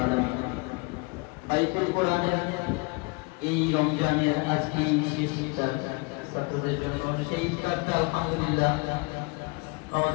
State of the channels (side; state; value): right; quieter; 29.2 dB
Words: আলামিন বাইতুল কোরআনের এই রমজানের আজকে শেষ ইফতার ছাত্রদের জন্য সেই ইফতারটা আলহামদুলিল্লাহ